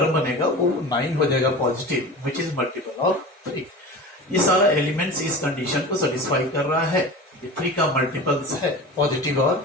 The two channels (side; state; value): both; normal; correlation 0.33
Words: बनेगा वो 9 हो जाएगा positive, which is multiple of 3। ये सारा एलिमेंट्स इस कंडीशन को सेटिस्फाई कर रहा है, ये 3 का मल्टीपल्स है, पॉजिटिव